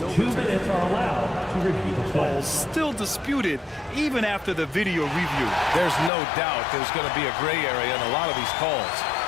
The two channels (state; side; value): drops out; right; at 6.1 s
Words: 2 minutes are allowed to review the play. Still disputed even after the video review. There's no doubt there's going to be a gray area in a lot of these calls.